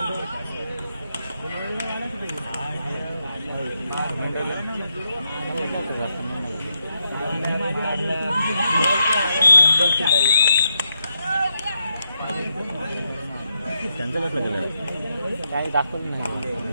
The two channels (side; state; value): both; inverted; correlation -0.83